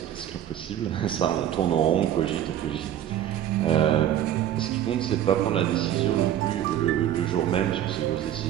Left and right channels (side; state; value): left; quieter; 11.2 dB